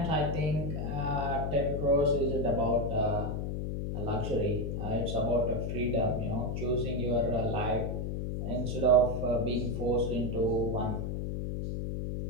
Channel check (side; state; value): left; noise; hum, 2 dB below the sound